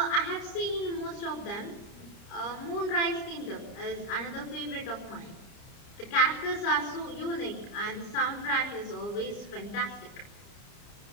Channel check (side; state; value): right; late; 30 ms